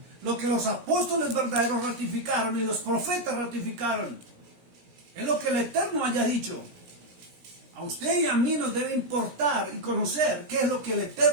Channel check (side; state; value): left; late; 17 ms